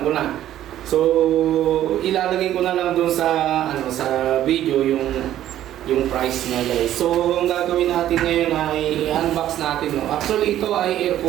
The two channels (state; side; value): quieter; left; 12.3 dB